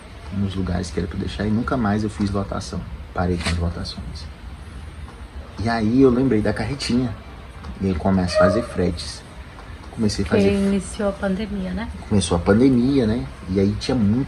nos lugares que era pra deixar, e nunca mais eu fiz lotação. Parei com as lotações. E aí eu lembrei da carretinha, e aí começo a fazer fretes. comecei a Porque fazer... iniciou a pandemia, né? Começou a pandemia, né? E aí tinha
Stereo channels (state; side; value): identical; both; correlation 1.00